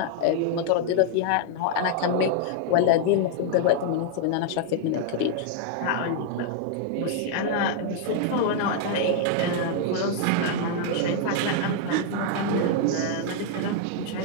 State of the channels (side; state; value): both; different; correlation 0.00